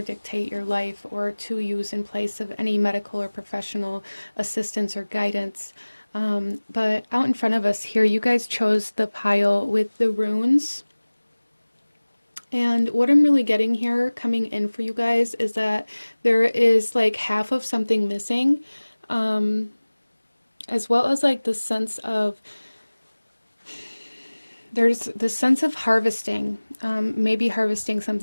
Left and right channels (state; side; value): inverted; both; correlation -1.00